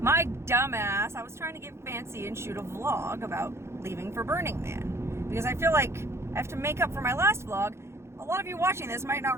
dumbass, I was trying to get fancy and shoot a vlog about leaving for Burning Man. Because I feel like I have to make up for my last vlog. A lot of you watching this might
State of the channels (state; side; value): late; left; 0.13 ms